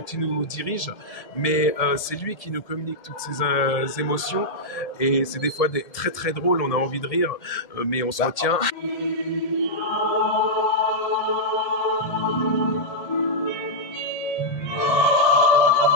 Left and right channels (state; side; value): late; right; 1.8 ms